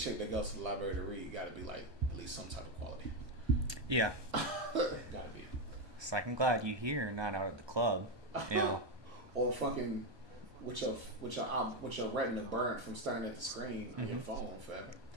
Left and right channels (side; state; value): left; late; 1.2 ms